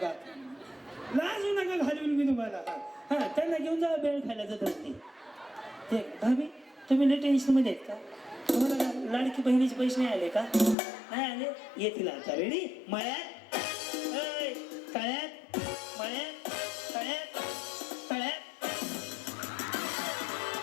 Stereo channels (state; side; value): drops out; right; at 10.8 s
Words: लाजू नका घालून मी तुम्हाला. हा त्यांना घेऊन जा बेळ खायला जात असते. ते भाभी तुम्ही लय टेन्शन मध्ये आहेत का? तुम्हाला लाडकी बहिणीचे पैसे नाही आले का? नाही आले येतील आता. रेडी? मळ्यात तळ्यात. मळ्यात तळ्यात. तळ्यात.